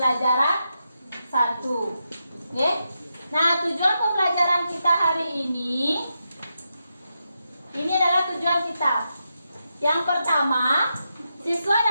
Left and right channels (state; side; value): inverted; both; correlation -0.86